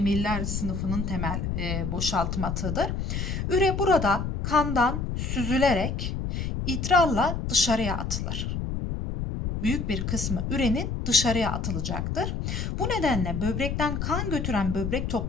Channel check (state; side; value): noise; left; rumble, 2 dB below the sound